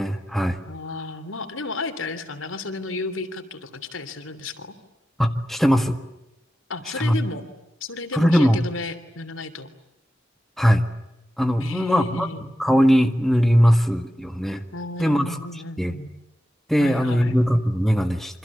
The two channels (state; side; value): normal; both; correlation 0.91